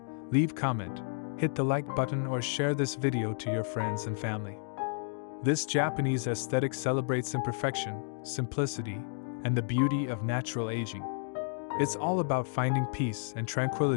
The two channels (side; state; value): right; silent; digital silence